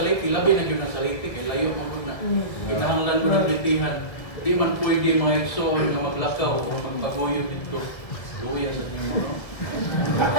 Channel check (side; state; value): right; late; 1.8 ms